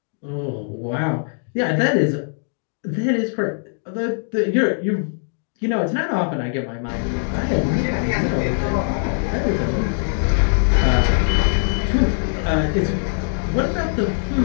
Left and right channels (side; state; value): right; silent; digital silence